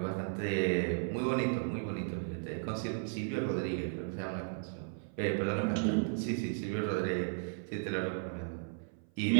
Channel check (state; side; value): silent; left; 55 dB below the other